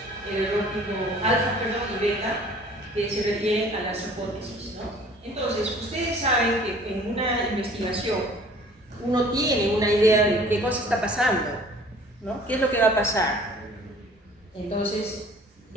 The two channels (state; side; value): normal; both; correlation 0.51